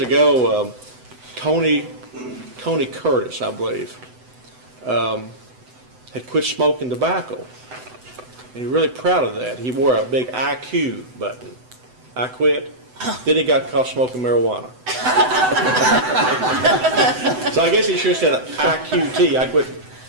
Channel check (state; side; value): late; left; 7.9 ms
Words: ago, Tony Curtis, I believe, had quit smoking tobacco, and he was really proud of that. He wore a big IQ button. I quit. Then he got caught smoking marijuana. So I guess he should have said IQT. I quit